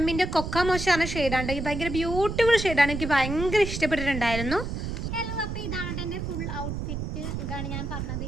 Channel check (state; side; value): noise; right; rumble, 4 dB below the sound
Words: കൊക്ക മോശമാണ് ഷെയ്ഡാണ്. ഇത് ഭയങ്കര ബ്യൂട്ടിഫുൾ ഷെയ്ഡാണ്, എനിക്ക് ഭയങ്കര ഇഷ്ടപ്പെട്ടിട്ടുണ്ടായിരുന്നു. ഹലോ, അപ്പോൾ ഇതാണ് എൻ്റെ ഫുൾ ഔട്ട്ഫിറ്റ്. ഇതാണ് ഞാൻ പറഞ്ഞത്,